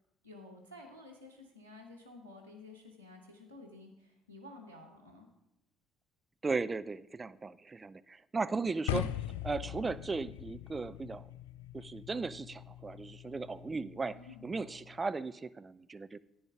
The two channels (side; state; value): both; normal; correlation 0.75